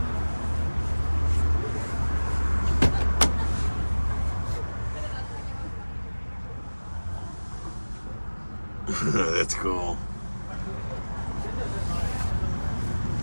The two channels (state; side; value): inverted; both; correlation -1.00